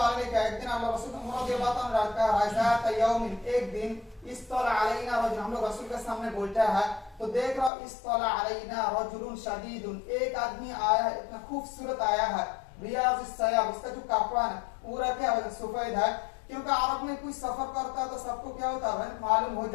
अलैहि का, एक दिन अल्लाह रसूल रज़ियल्लाहु अन्हु का राज़ात यौमिन, एक दिन इस्तला अलैना रजुल, हम लोग रसूल के सामने बैठा है तो देख रहा इस्तला अलैना रजुलुन शदीदुन, एक आदमी आया है, इतना खूबसूरत आया है, रियाज़ुस सयाब, उसका जो कपड़ा है पूरा क्या है सफेद है। क्योंकि अरब में कोई सफर करता है तो सबको क्या होता है मालूम हो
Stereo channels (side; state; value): right; drops out; at 7.7 s